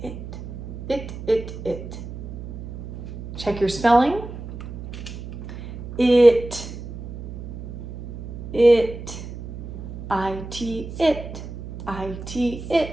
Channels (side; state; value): right; noise; hum, 10 dB below the sound